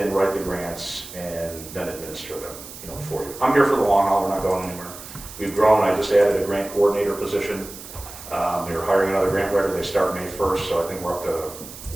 write the grants, and then administer them, you know, for you. I'm here for the long haul, we're not going anywhere. We've grown, I just added a grant coordinator position. We were hiring another grant writer, they start May 1st, so I think we're up to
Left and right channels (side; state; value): right; noise; hiss, 14 dB below the sound